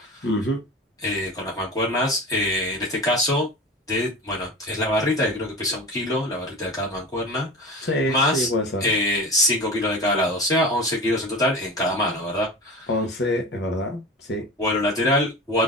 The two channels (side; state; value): both; normal; correlation 0.32